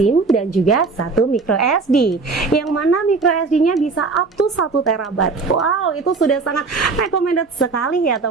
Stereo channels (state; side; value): quieter; left; 4.2 dB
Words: dan juga satu micro SD, yang mana micro SD-nya bisa up to 1 TB. Wow, itu sudah sangat recommended sekali ya